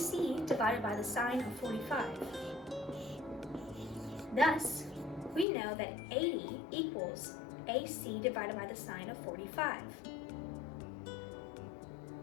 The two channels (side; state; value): right; drops out; at 5.5 s